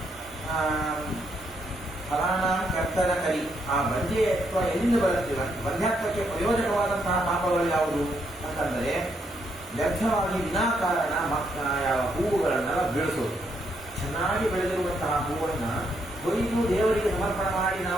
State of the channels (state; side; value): normal; both; correlation 0.76